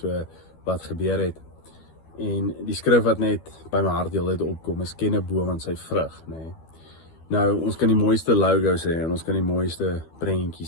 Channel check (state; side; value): late; right; 12 ms